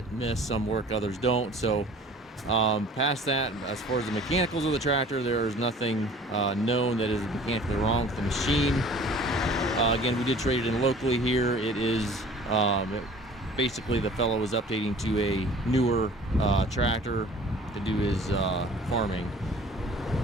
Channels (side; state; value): both; normal; correlation 0.48